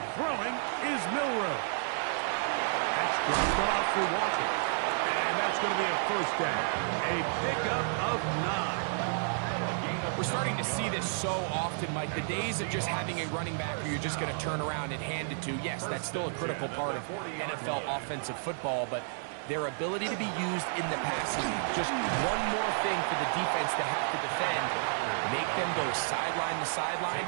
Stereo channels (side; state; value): left; silent; 57 dB below the other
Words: Throwing is Milroe. That's dropped off for Walker. And that's going to be a first down. A pickup of 9. We're starting to see this so often, Mike. The days of just having a running back where you're just going to turn around and hand it to, yes, that's still a critical part of NFL offensive football, but their ability to be used in the passing game, just one more thing for the defense to have to defend, make them go sideline to sideline,